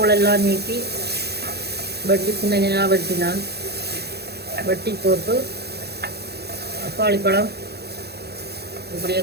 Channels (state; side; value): late; left; 0.47 ms